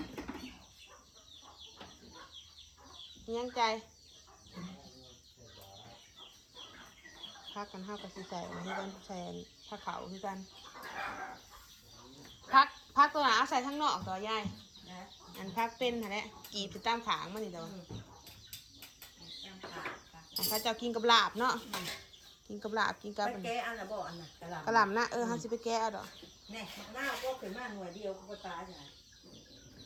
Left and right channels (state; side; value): identical; both; correlation 1.00